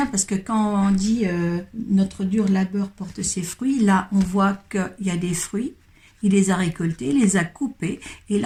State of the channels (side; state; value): both; identical; correlation 1.00